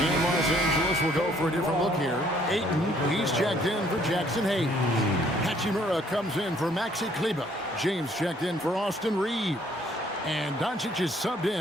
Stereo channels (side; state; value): both; normal; correlation 0.63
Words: Los Angeles will go for a different look here. Ayton, he's checked in for Jackson Hayes. Hachimura comes in for Maxi Kleber. James checked in for Austin Reeves. And Doncic is subbed